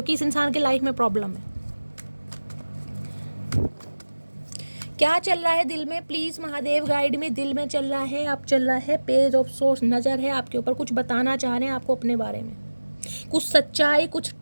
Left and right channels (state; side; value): inverted; both; correlation -1.00